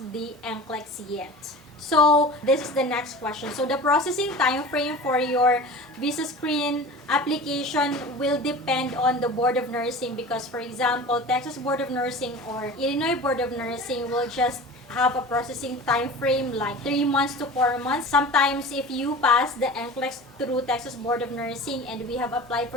the NCLEX yet. So this is the next question. So the processing time frame for your VisaScreen application will depend on the Board of Nursing, because for example, Texas Board of Nursing or Illinois Board of Nursing will just have a processing time frame like 3 months to 4 months. Sometimes if you pass the NCLEX through Texas Board of Nursing and we have applied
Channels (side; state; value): both; normal; correlation 0.37